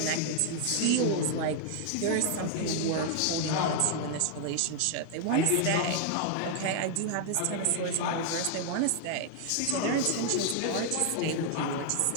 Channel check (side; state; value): both; different; correlation 0.00